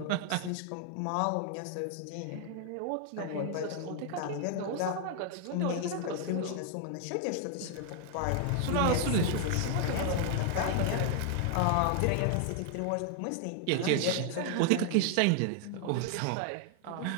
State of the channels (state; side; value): different; both; correlation 0.00